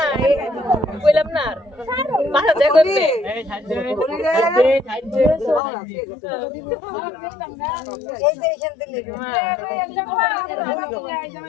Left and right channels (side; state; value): right; drops out; at 5.6 s